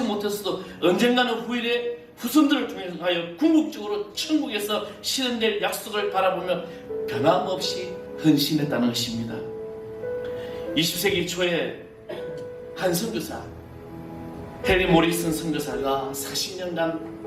못했어도 언젠가는 후일에 후손들을 통하여 궁극적으로 천국에서 실현될 약속을 바라보며 변함없이 헌신했다는 것입니다. 20세기 초에 한 선교사, 해리 모리슨 선교사가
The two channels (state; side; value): identical; both; correlation 1.00